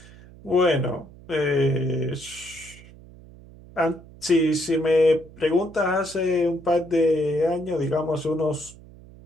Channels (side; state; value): right; noise; hum, 21 dB below the sound